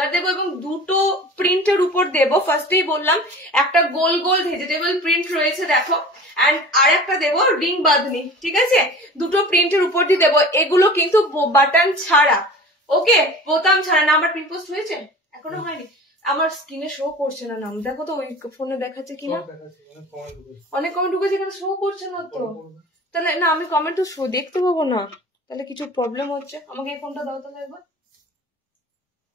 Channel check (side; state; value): both; normal; correlation 0.40